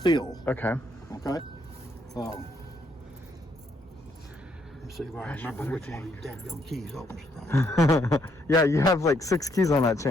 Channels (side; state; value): both; normal; correlation 0.72